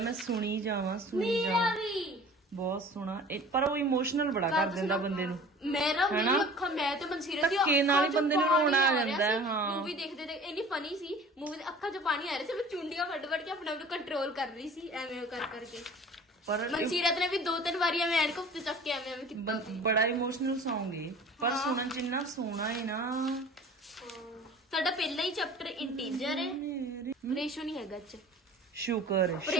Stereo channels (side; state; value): both; normal; correlation 0.44